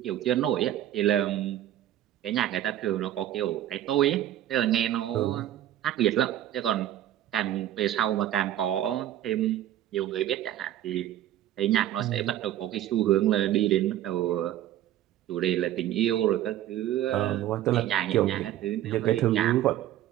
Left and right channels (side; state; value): left; quieter; 12.5 dB